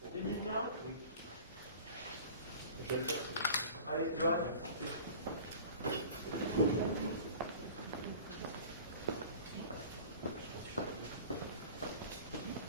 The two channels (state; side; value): inverted; both; correlation -0.41